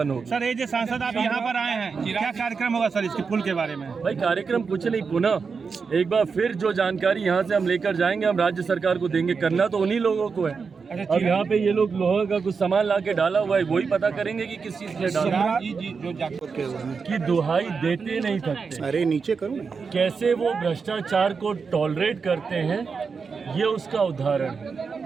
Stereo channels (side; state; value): left; quieter; 5.3 dB